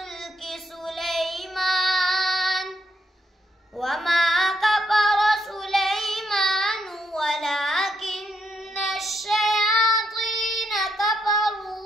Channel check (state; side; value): normal; both; correlation 0.77